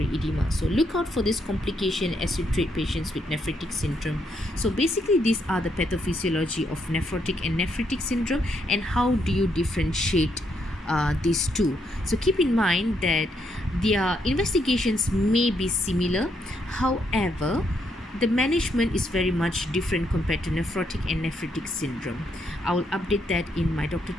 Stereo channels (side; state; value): both; normal; correlation 0.76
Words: edema. So look out for this complication as you treat patients with nephritic syndrome. So basically, these are the pathophysiology of nephrotic and nephritic syndrome, and how do you differentiate these two. So keep in mind that their investigations may be similar, however the management is very much different compared to nephrotic and nephritic syndrome. I will update that in my Dr.